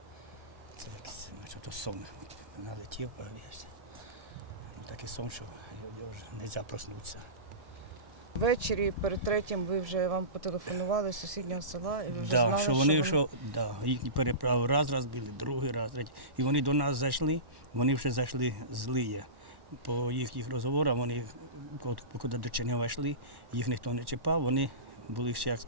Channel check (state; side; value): late; left; 1.1 ms